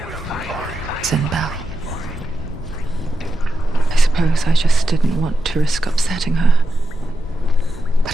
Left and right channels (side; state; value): both; normal; correlation 0.88